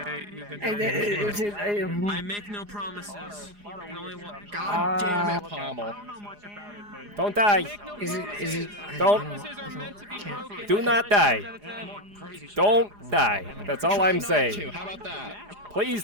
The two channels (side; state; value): left; late; 4.9 ms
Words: You a good Hey, day. I make no promises. I can only want. God damn it, Pommel. Don't die. Is it? Don't. Do not die. Don't die. That's all I'm saying. How about that? Please